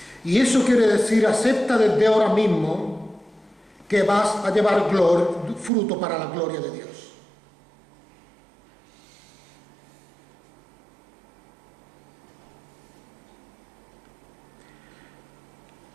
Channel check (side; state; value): left; drops out; at 5.7 s